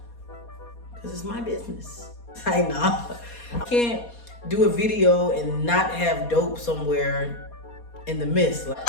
Because it's my business. I know. I can't do a video and not have dope somewhere in the midst.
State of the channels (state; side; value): late; right; 4.2 ms